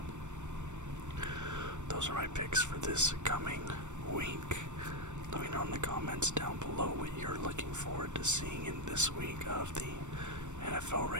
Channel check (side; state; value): left; late; 0.84 ms